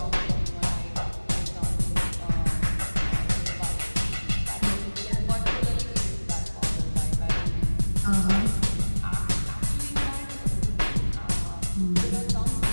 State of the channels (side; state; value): both; inverted; correlation -1.00